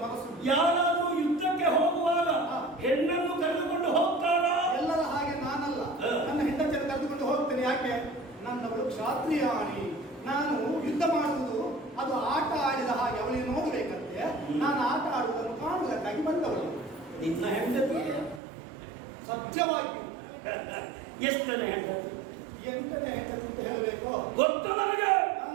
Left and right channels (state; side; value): drops out; left; at 18.4 s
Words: ಮನಸ್ಸು. ಯಾರಾದ್ರೂ ಯುದ್ಧಕ್ಕೆ ಹೋಗುವಾಗ ಹೆಣ್ಣನ್ನು ಕರೆದುಕೊಂಡು ಹೋಗ್ತಾರ? ಎಲ್ಲರ ಹಾಗೆ ನಾನಲ್ಲ, ನನ್ನ ಹೆಂಡತಿಯನ್ನು ಕರೆದುಕೊಂಡು ಹೋಗ್ತೇನೆ. ಯಾಕೆ? ನನ್ನವಳು ಕ್ಷಾತ್ರಿಯಾಣಿ. ನಾನು ಯುದ್ಧ ಮಾಡುವುದು ಅದು ಆಟ ಆಡಿದ ಹಾಗೆ ಅವಳಿಗೆ ನೋಡಬೇಕಂತೆ. ನಾನು ಆಟ ಆಡುವುದನ್ನು ಕಾಣುವುದಕ್ಕಾಗಿ ಬಂದವಳು. ನಿನ್ನ ಹೆಂಡತಿ ಸತ್ಯವಾಗಿ ಎಷ್ಟು ಜನ ಹೆಂಡತಿ? 8ನೇ ಹೆಂಡತಿ ಅಂತ ಹೇಳಬೇಕು. ಗೊತ್ತು ನನಗೆ,